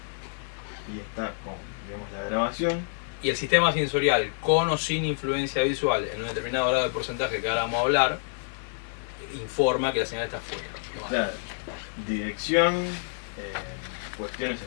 y está con, digamos, la grabación. Y el sistema sensorial, con o sin influencia visual, en un determinado grado de porcentaje que ahora vamos a hablar, informa que la señal está fuera. ¿No? Claro, dirección, cuestiones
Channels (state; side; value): silent; right; digital silence